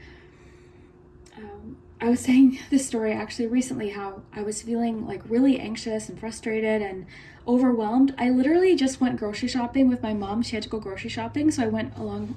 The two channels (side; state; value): both; identical; correlation 1.00